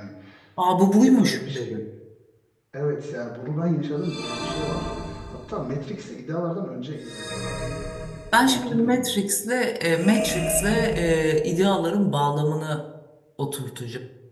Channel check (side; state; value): both; identical; correlation 1.00